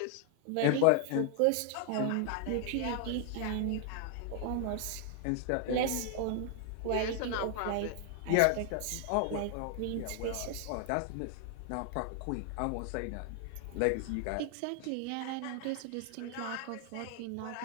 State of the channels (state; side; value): different; both; correlation 0.00